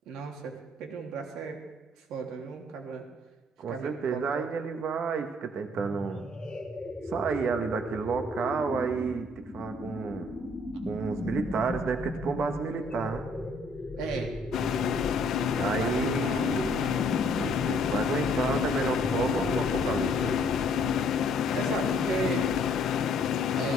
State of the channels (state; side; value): normal; both; correlation 0.62